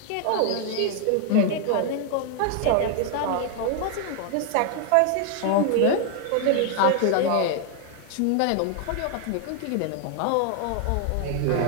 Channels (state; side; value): different; both; correlation 0.00